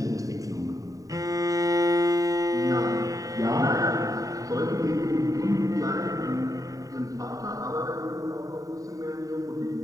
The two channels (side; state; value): left; late; 0.16 ms